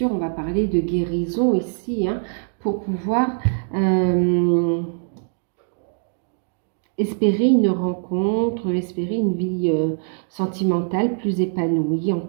on va parler de guérison ici, pour pouvoir espérer une rencontre, espérer une vie sentimentale plus épanouie en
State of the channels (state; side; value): silent; left; digital silence